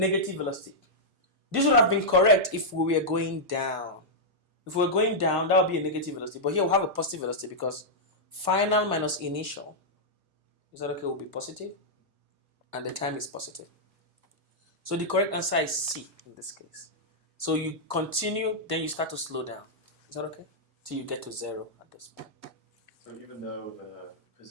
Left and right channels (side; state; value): left; late; 1.5 ms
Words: velocity. This would have been correct if we were going down. If we were going down, that would be a negative velocity. But here we have a positive velocity because final minus initial, is that okay, will be positive. And the time is positive. So the correct answer is C in this case. So you continue, then you start to slow down. Is that okay? Till you get to 0 at this point. So even though the